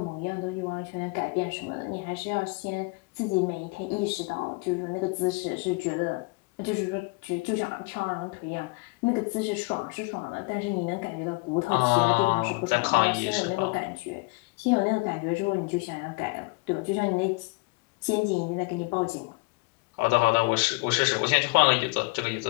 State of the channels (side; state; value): right; quieter; 28.0 dB